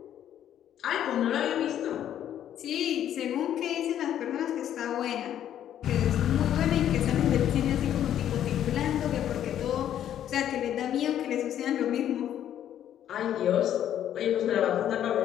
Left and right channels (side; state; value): right; quieter; 10.7 dB